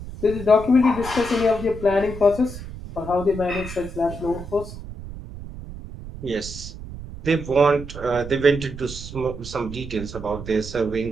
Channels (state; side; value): noise; right; rumble, 11 dB below the sound